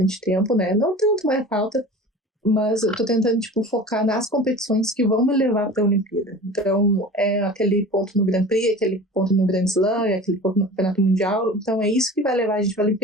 tempo, né, não tanto, mas falta. Mas eu tô tentando, tipo, focar nas competições que vão me levar para a Olimpíada. Então, é aquele ponto no Grand Prix, aquele ponto no Grand Slam, aquele ponto no Campeonato Mundial. Então, é isso que vai levar a gente para a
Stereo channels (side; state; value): both; normal; correlation 0.38